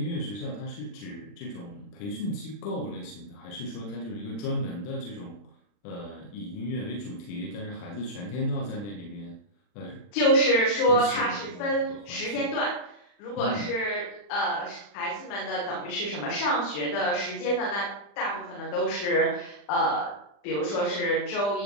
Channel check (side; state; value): right; late; 40 ms